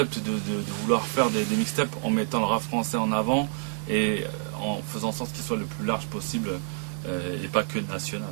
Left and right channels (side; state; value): left; silent; digital silence